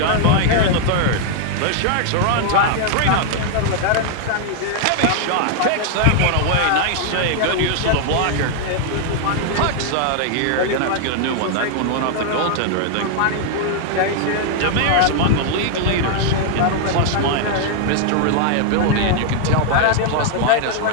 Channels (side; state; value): both; different; correlation 0.00